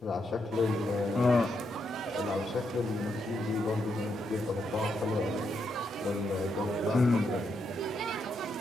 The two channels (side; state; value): both; normal; correlation 0.80